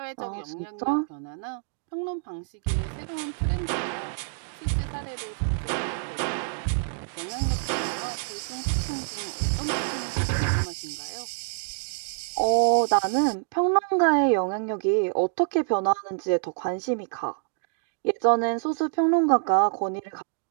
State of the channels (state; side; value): silent; left; digital silence